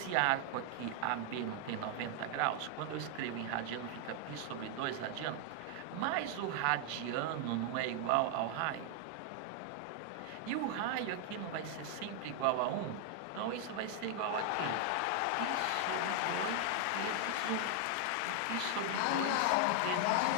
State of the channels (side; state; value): both; different; correlation 0.00